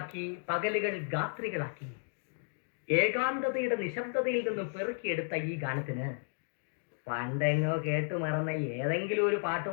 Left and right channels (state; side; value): silent; right; digital silence